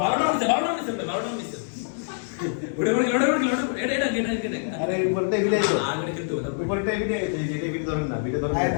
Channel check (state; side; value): silent; right; digital silence